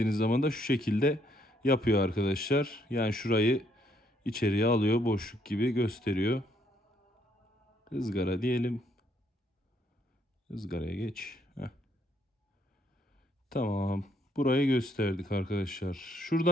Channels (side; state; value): both; normal; correlation 0.70